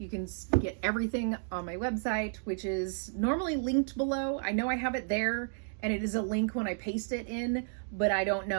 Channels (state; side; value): silent; left; digital silence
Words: can get everything on my website, which is normally linked below. I know I have it there, and it is a link when I paste it in, but I don't